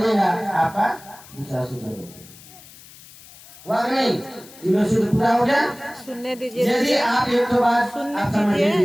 आपका दूसरा सूत्र हुआ नहीं, तीनों सूत्र पूरा हो गया। सुनने दीजिए, यदि आप एक तो बात आप समझ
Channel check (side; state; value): left; noise; hiss, 21 dB below the sound